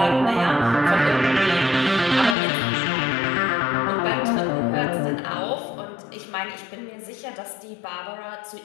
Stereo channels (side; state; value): right; drops out; at 2.4 s